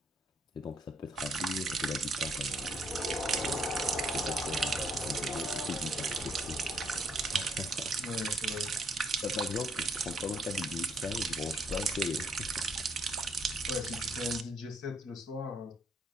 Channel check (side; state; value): both; normal; correlation 0.70